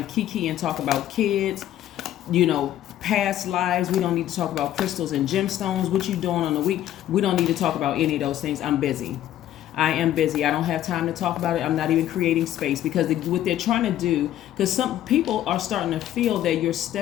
kiki and talk about kids, past lives. We don't need to talk about crystals and gemstones, what you doing on the week. We don't need to talk about any of those things. I'm busy. I am busy. I don't have time to talk about it. I'm not even creating space, because what they're trying to do, because some people are starting to feel that you're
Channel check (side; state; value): right; quieter; 12.4 dB